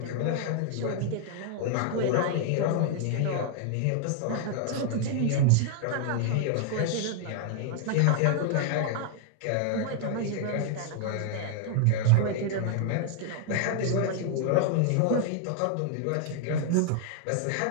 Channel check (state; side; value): different; both; correlation 0.00